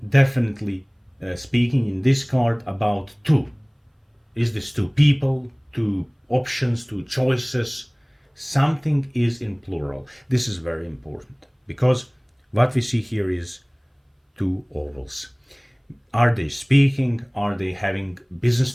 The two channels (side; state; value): both; identical; correlation 1.00